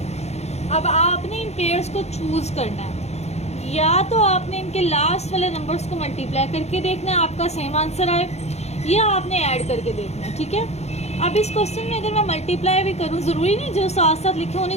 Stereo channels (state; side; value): late; right; 0.31 ms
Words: अब आपने इन पेयर्स को चूज करना है, या तो आपने इनके लास्ट वाले नंबर्स को मल्टीप्लाई करके देखना है आपका सेम आंसर आए, या आपने ऐड करके देखना है। ठीक है, अब इस क्वेश्चन में अगर मैं मल्टीप्लाई भी करूँ, ज़रूरी नहीं जो साथ साथ लिखे